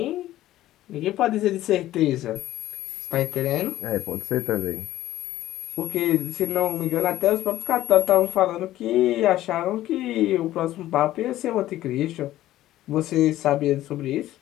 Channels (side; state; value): right; quieter; 14.5 dB